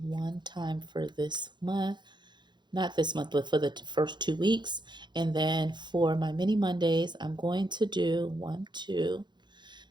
one time for this month. Not this month, but for the first 2 weeks. And then for my mini Mondays, I'm going to do 1, 2,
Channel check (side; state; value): left; late; 0.22 ms